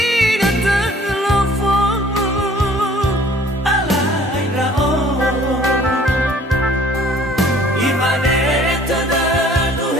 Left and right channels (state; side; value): normal; both; correlation 0.55